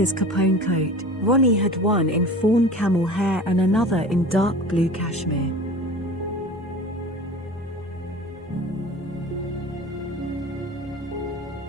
Capone coat, Ronnie had one in fawn camel hair and another in dark blue cashmere.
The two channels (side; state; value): both; normal; correlation 0.38